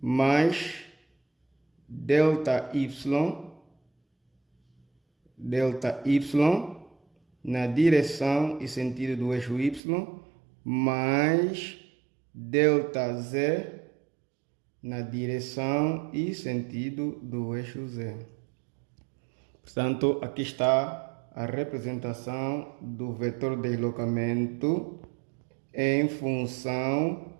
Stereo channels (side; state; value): left; drops out; at 9.8 s